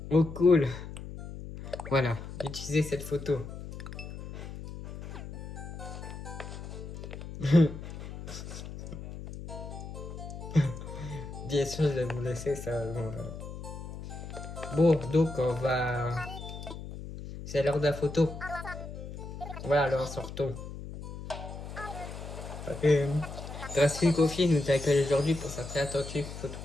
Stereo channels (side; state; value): left; noise; hum, 10 dB below the sound